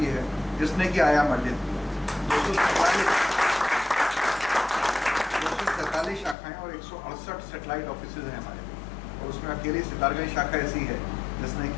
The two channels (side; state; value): right; drops out; at 6.4 s